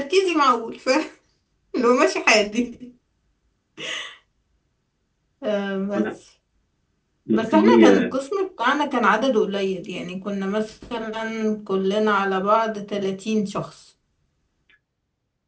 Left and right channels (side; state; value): both; identical; correlation 1.00